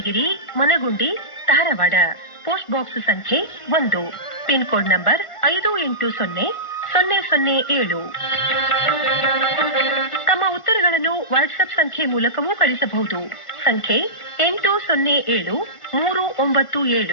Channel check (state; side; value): late; right; 1.5 ms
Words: ಮನಗುಂಡಿ, ಧಾರವಾಡ. ಪೋಸ್ಟ್ ಬಾಕ್ಸ್ ಸಂಖ್ಯೆ 1, ಪಿನ್ ಕೋಡ್ ನಂಬರ್ 580007. ತಮ್ಮ ಉತ್ತರಗಳನ್ನು ವಾಟ್ಸ್ಆಪ್ ಸಂಖ್ಯೆ ಮೂಲಕವೂ ಕಳಿಸಬಹುದು. ಸಂಖ್ಯೆ